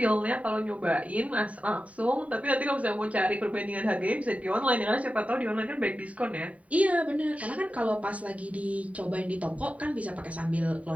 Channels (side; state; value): left; late; 0.068 ms